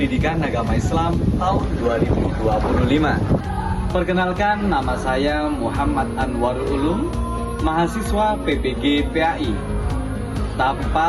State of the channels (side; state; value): both; identical; correlation 1.00